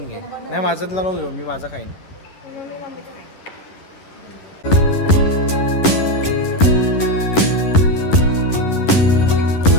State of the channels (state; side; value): late; right; 11 ms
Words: घे. नाही माझ्यातला नको घेऊ, मी माझा खाईन.